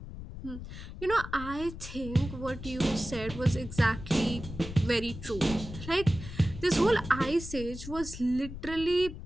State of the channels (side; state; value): left; noise; rumble, 11 dB below the sound